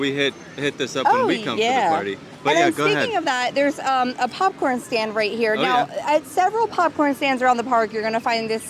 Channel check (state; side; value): identical; both; correlation 1.00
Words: hit this up when we come to the party. But And yeah, then go speaking ahead. of that, there's a popcorn stand right here. Oh, now, yeah. at several popcorn stands around the park, you're going to find this